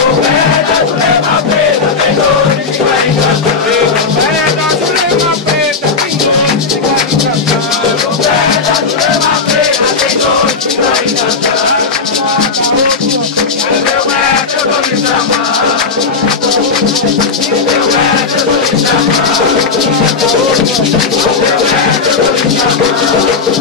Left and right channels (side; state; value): right; quieter; 4.7 dB